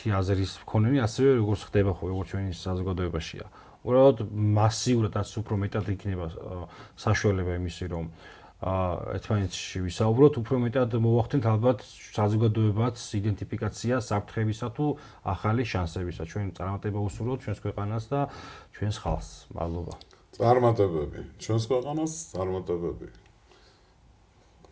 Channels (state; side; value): identical; both; correlation 1.00